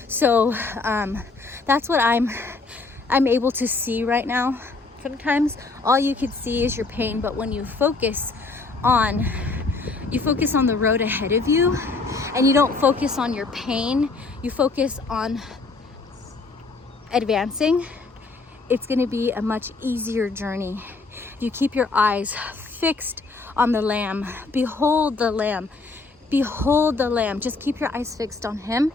So that's what I'm able to see right now. Sometimes all you could see is your pain, but when you focus on the road ahead of you, and you don't focus on your pain, you focus on advancing, it's going to be a much easier journey. You keep your eyes fixed on the Lamb. Behold the Lamb. Behold the Lamb. Just keep your eyes fixed on him.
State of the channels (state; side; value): quieter; right; 3.8 dB